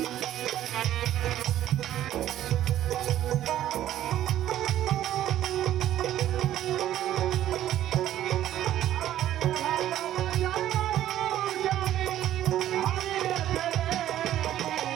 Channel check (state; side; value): quieter; left; 12.5 dB